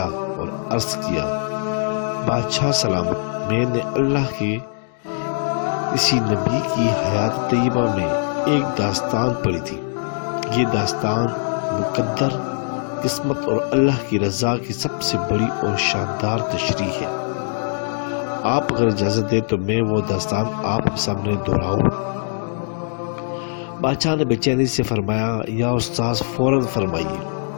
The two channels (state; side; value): silent; right; digital silence